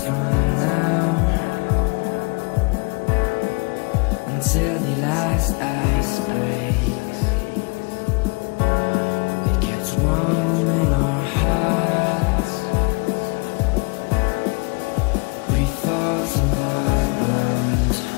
from now until the last ice breaks. It gets warm in our hearts, grief falls on the ground.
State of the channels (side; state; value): right; quieter; 30.5 dB